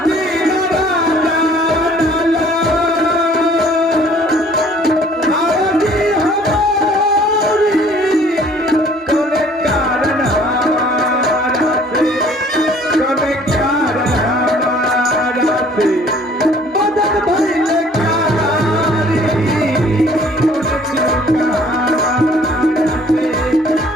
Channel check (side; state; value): both; normal; correlation 0.55